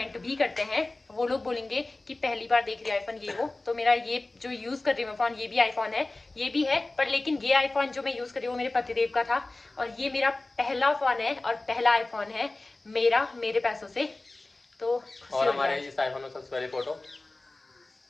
भी करते हैं। वो लोग बोलेंगे कि पहली बार देख रही है आईफोन ये वो। तो मेरा ये जो यूज कर रही हूँ फोन, ये भी आईफोन है, ये भी है, पर लेकिन ये आईफोन जो मैं यूज कर रही हूँ वो मेरे पतिदेव का था और ये मेरा पहला फोन है और पहला आईफोन है मेरा, मेरे पैसों से। तो और हमारे इस आईफोन में सबसे पहली फोटो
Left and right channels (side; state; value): right; quieter; 3.0 dB